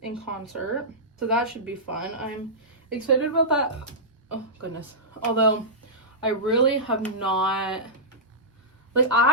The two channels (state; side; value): normal; both; correlation -0.15